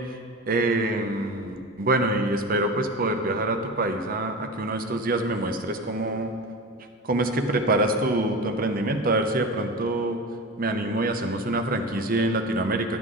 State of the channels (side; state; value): both; normal; correlation 0.29